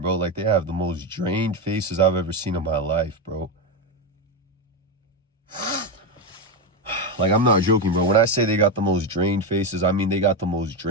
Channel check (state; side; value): normal; both; correlation 0.10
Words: bro. Like, they have the most drained faces I've ever seen in my life, bro. Like, I'm not joking, bro. When I say they got the most drained faces, I mean they got the most